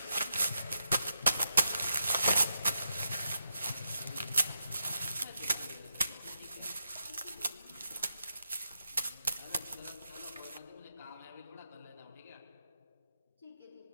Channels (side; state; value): both; inverted; correlation -0.84